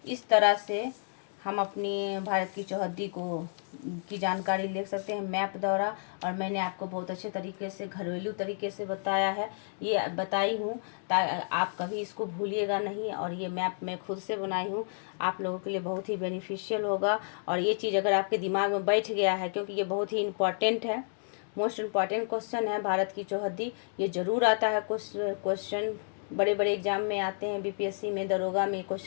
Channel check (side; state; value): right; silent; digital silence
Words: इस तरह से हम अपनी भारत की चौहद्दी की जानकारी ले सकते हैं मैप द्वारा। और मैंने आपको बहुत अच्छे तरीके से, घरेलू तरीके से बताया है, ये बताई हूँ आप कभी इसको भूलिएगा नहीं। और ये मैप मैं खुद से बनाई हूँ, आप लोगों के लिए बहुत ही बेनिफिशियल होगा। और ये चीज़ अगर आपके दिमाग में बैठ गया है, क्योंकि ये बहुत ही इम्पॉर्टेंट है, मोस्ट इम्पॉर्टेंट क्वेश्चन है भारत की चौहद्दी। ये ज़रूर आता है, क्वेश्चन बड़े बड़े एग्जाम में आते हैं, बीपीएससी में, दरोगा में